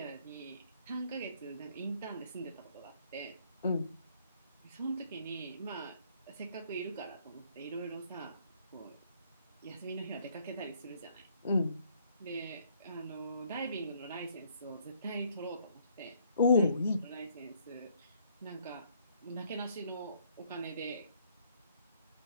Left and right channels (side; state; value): both; inverted; correlation -0.64